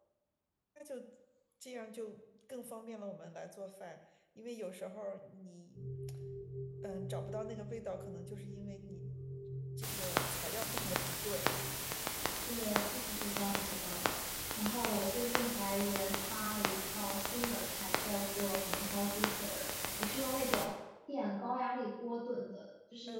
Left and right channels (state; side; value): identical; both; correlation 1.00